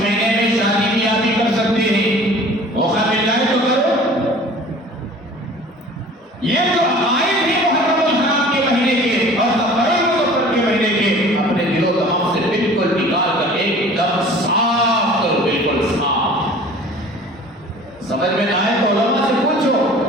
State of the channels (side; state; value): both; normal; correlation 0.46